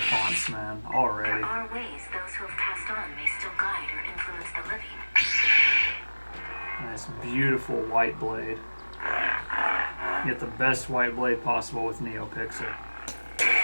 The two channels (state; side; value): inverted; both; correlation -1.00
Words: fonts, man, already. There are ways those who have passed on may still guide or influence the living. Nice, beautiful white blade. Get the best white blade possible with NeoPixel.